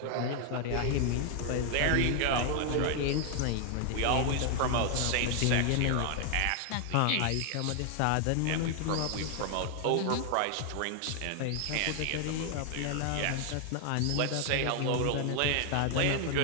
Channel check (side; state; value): both; different; correlation 0.00